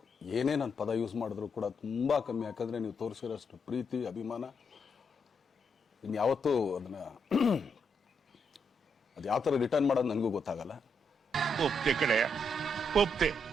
ಏನೇ ನನ್ನ ಪದ ಯೂಸ್ ಮಾಡಿದ್ರು ಕೂಡ ತುಂಬ ಕಮ್ಮಿ. ಯಾಕಂದರೆ ನೀವು ತೋರಿಸಿರೋಷ್ಟು ಪ್ರೀತಿ ಅಭಿಮಾನ ಇನ್ಯಾವತ್ತೂ ಅದನ್ನು ಅದು ಯಾವ ಥರ ರಿಟರ್ನ್ ಮಾಡೋದು ನನಗೂ ಗೊತ್ತಾಗಲ್ಲ. ಒಪ್ತೆ ಕಡೆಯ ಒಪ್ತೆ.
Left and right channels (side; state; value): both; normal; correlation 0.79